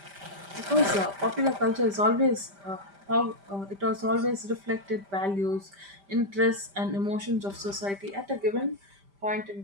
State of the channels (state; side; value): late; left; 5.1 ms